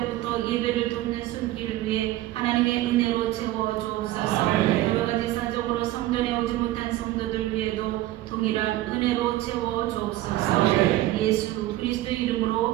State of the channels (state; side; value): quieter; left; 15.9 dB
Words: 예배를 돕는 손길을 위해 하나님의 은혜로 채워 주옵소서. 여러가지 사정으로 성전에 오지 못한 성도들 위에도 동일한 은혜로 채워 주옵소서. 예수 그리스도